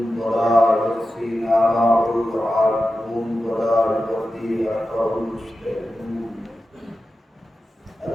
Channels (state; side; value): normal; both; correlation 0.92